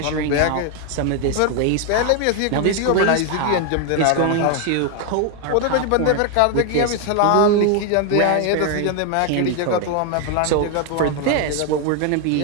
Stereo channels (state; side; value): different; both; correlation 0.01